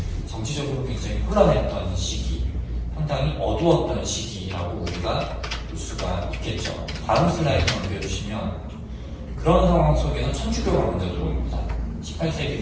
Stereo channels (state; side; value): identical; both; correlation 1.00